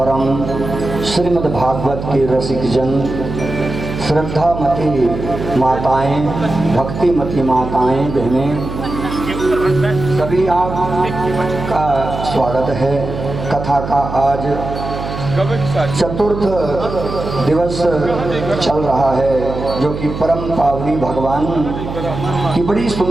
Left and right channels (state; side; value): noise; right; hum, 7 dB below the sound